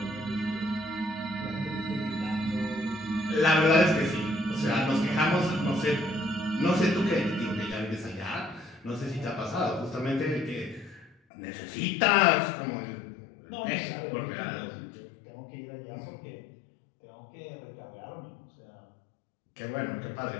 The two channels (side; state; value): right; drops out; at 11.1 s